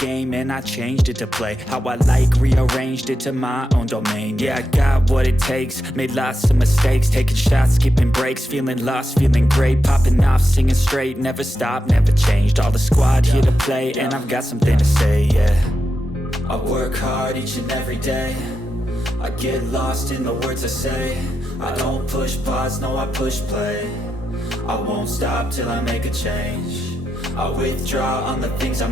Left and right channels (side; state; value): both; normal; correlation 0.87